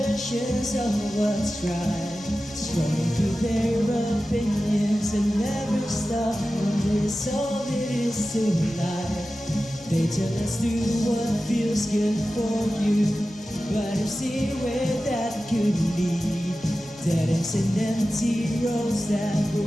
of what's right, strolling through their opinions and never stop on this all it is to life. They tell us do what feels good for you, but I see where that could lead. Dead ends and empty roads that we're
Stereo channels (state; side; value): noise; right; hum, 28 dB below the sound